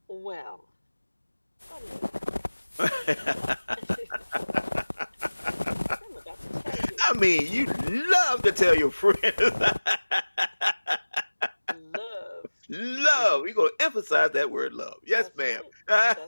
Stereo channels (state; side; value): inverted; both; correlation -1.00